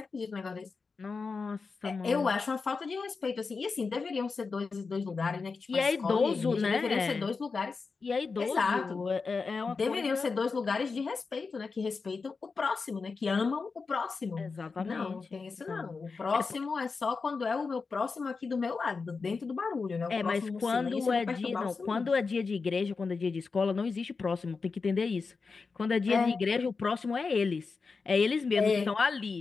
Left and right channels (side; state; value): right; quieter; 4.6 dB